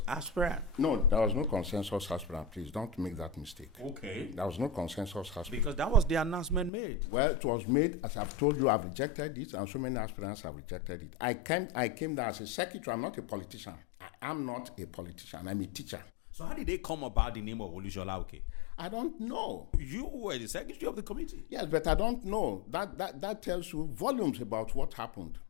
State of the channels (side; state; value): right; drops out; at 6.7 s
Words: aspirant? No, there was no consensus aspirant. Please don't make that mistake. Okay. There was no consensus aspirant. Because that was the announcement made. Well, it was made, as I've told you, I've rejected it, and so many aspirants have rejected it. I came there as a secretary. I'm not a politician. I am not a politician. I'm a teacher. So how did they come about the name of Olusola Oke? I don't know. You were the secretary of the committee. Yes, but I don't know. That tells you volumes about what happened.